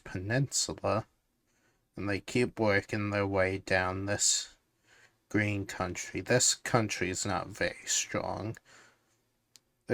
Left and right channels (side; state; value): both; identical; correlation 1.00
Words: and they keep working their way down this green country. This country is not very strong,